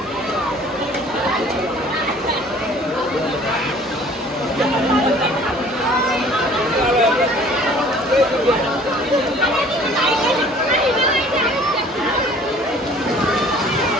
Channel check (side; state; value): both; normal; correlation 0.52